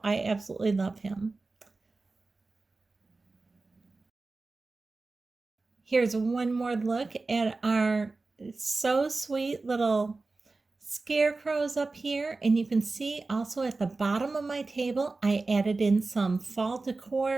I absolutely love him. Here's one more look at our so sweet little scarecrows up here, and you can see also at the bottom of my table I added in some fall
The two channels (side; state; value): left; quieter; 3.6 dB